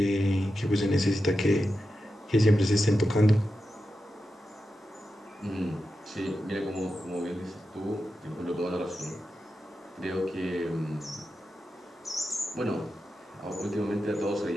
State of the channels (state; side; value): normal; both; correlation 0.90